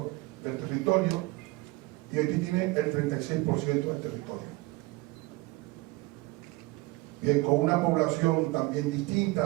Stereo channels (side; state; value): left; quieter; 22.1 dB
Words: del territorio y Haití tiene el 36% del territorio. Bien, con una población también